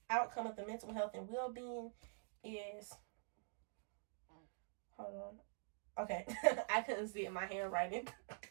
outcome of the mental health and well-being is, hold on. Okay, I couldn't see it, my handwriting.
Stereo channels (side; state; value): left; silent; digital silence